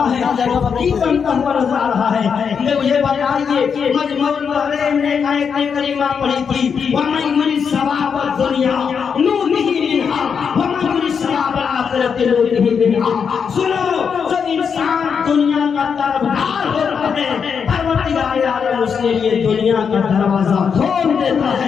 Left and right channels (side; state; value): right; quieter; 6.5 dB